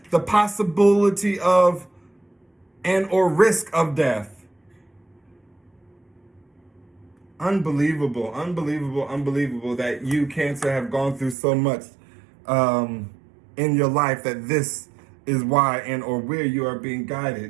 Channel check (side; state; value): left; drops out; at 11.4 s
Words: the possibility of and or risk of death. Unbelievable, unbelievable, unbelievable that you, Cancer, have gone through so much in your life that this is why and or where you are being